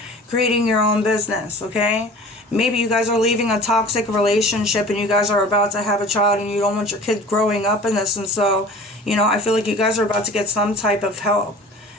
creating your own business. Okay? Maybe you guys are leaving a toxic relationship and you guys are about to have a child and you don't want your kid growing up in this. And so, you know, I feel like you guys are about to get some type of help.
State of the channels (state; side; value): normal; both; correlation 0.42